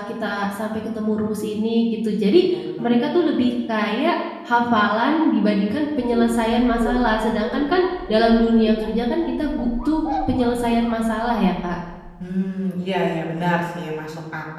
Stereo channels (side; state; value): both; identical; correlation 1.00